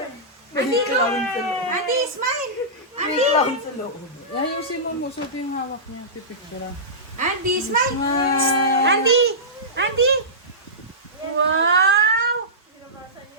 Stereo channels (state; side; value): normal; both; correlation -0.18